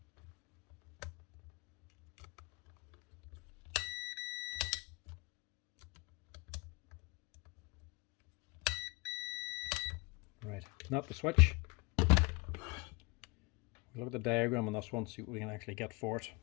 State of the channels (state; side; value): quieter; right; 28.5 dB